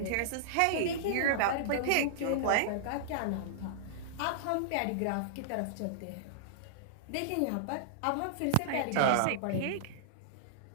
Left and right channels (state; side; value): different; both; correlation -0.02